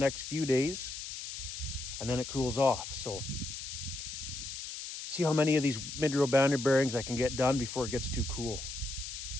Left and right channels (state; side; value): noise; left; hiss, 8 dB below the sound